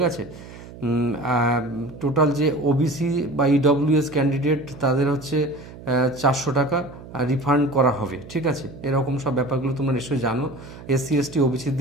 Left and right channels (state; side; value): noise; right; hum, 16 dB below the sound